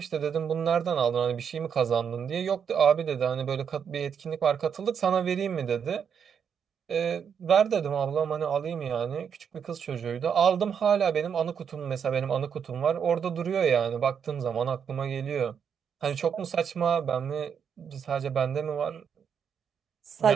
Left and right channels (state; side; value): quieter; left; 7.4 dB